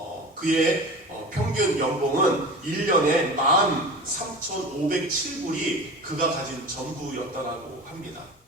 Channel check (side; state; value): both; normal; correlation 0.33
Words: 그의 평균 연봉은 1년에 13,507불이 그가 가진 전부였다고 합니다.